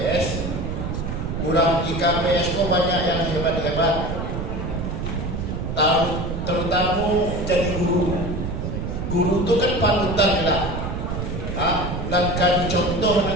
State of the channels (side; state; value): right; noise; rumble, 4 dB below the sound